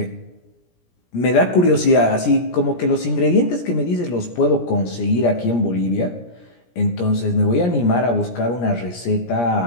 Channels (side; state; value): right; late; 17 ms